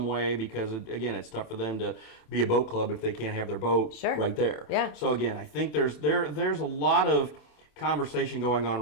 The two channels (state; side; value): late; right; 27 ms